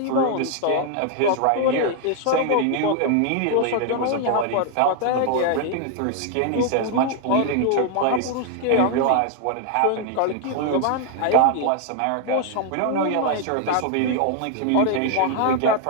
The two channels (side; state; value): both; different; correlation 0.00